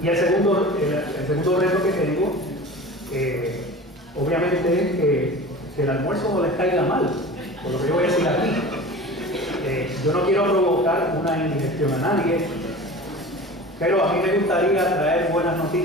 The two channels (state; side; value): normal; both; correlation 0.36